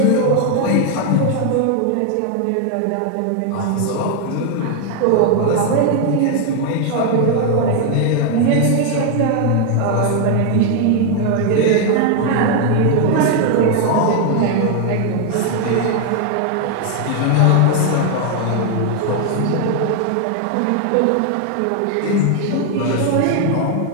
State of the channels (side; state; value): both; different; correlation 0.00